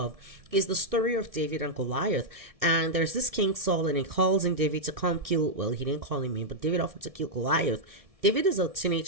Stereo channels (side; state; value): left; late; 1.7 ms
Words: is the story of David and Goliath. And there's this King Saul, and he calls in David to come kill, well, he didn't call him in, but David offered to kill Goliath. David is a